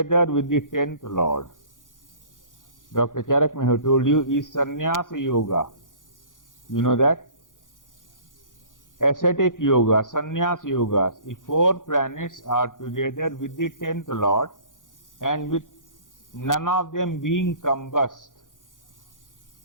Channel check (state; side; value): late; right; 0.88 ms